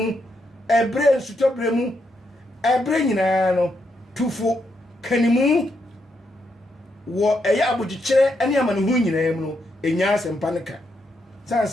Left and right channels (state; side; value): normal; both; correlation 0.80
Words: ɛbrɛ nsutɔ brɛ mu ɛbrɛ nyinaa no tufo kanimu wɔ ɛyɛ abogyekyerɛ ɛne amanehu nyinaa mu no ɛnya asɛmpa no ka san